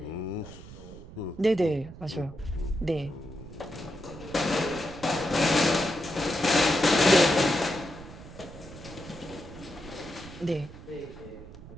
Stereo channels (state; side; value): noise; right; rumble, 16 dB below the sound